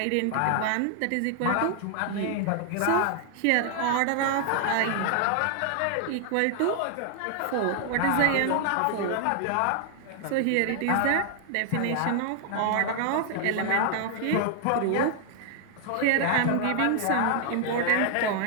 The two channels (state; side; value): different; both; correlation 0.00